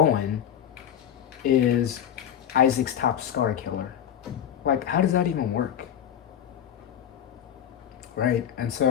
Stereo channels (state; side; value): quieter; right; 9.6 dB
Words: is Isaac's top scar killer? Like, how does that even work? Right? And